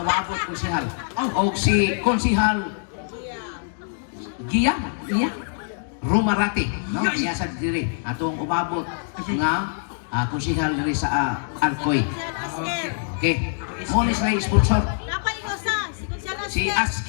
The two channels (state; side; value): silent; right; digital silence